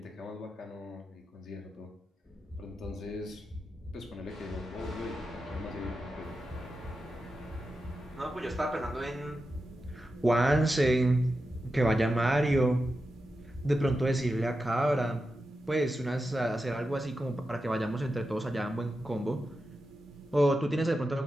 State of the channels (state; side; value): normal; both; correlation 0.90